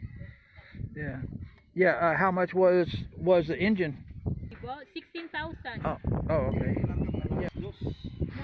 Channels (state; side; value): identical; both; correlation 1.00